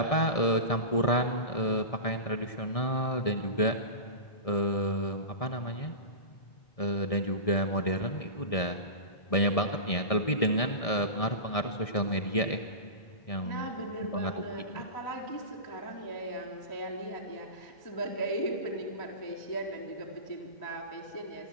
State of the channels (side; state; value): right; late; 1.6 ms